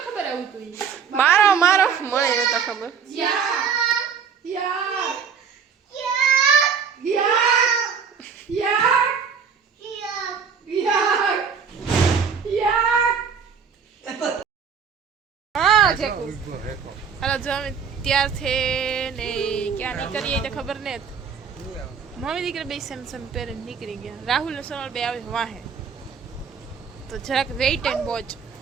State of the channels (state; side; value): quieter; left; 6.5 dB